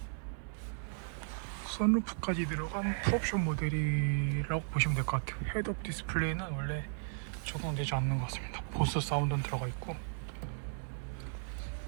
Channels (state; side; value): silent; left; 54 dB below the other